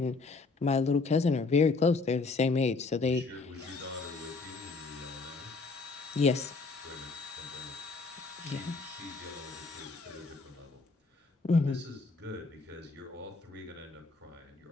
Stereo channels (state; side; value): quieter; right; 4.0 dB